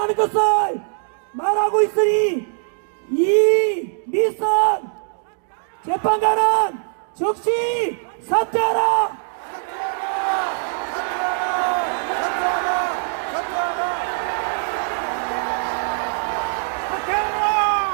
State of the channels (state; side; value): silent; left; digital silence